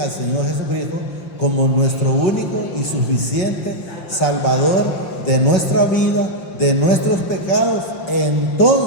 Señor Jesucristo como nuestro único y suficiente Salvador de nuestra vida, de nuestros pecados,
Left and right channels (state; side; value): late; right; 5.7 ms